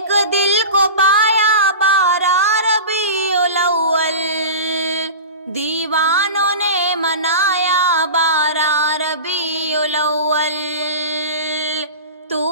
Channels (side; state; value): both; inverted; correlation -0.31